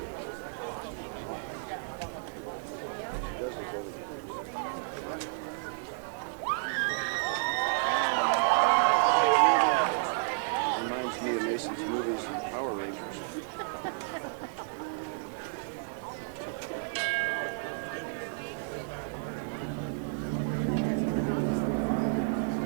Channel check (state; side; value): silent; left; digital silence